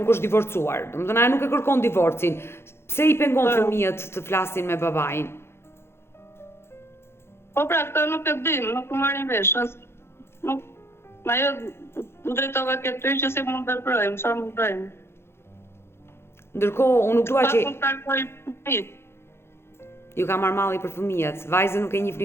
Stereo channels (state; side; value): late; right; 0.12 ms